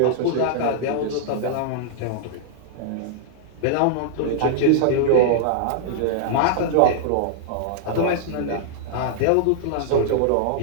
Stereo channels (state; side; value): different; both; correlation -0.01